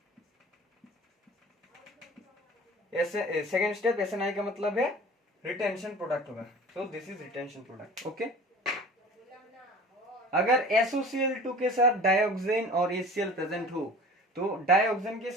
सेकेंड स्टेप SNI का मतलब है रिटेंशन प्रोडक्ट होगा, so this is retention product, okay. अगर SOCl2 के साथ डायोक्सिन और HCl प्रेजेंट हो तो डायोक्सिन के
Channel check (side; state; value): both; normal; correlation 0.42